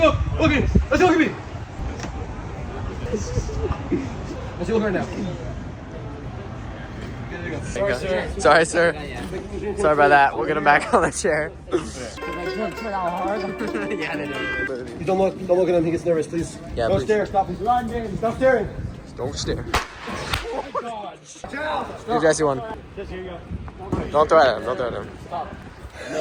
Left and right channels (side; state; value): both; identical; correlation 1.00